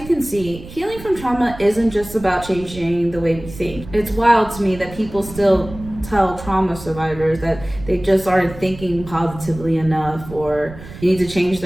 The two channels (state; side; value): noise; right; rumble, 15 dB below the sound